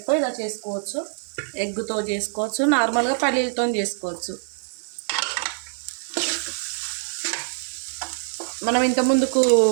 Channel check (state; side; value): silent; left; 62 dB below the other